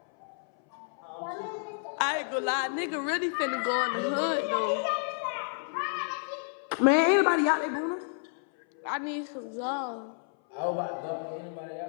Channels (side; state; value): right; silent; 58 dB below the other